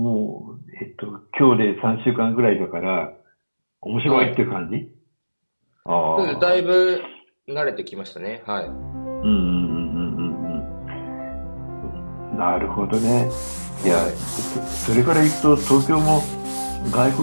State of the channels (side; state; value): both; inverted; correlation -1.00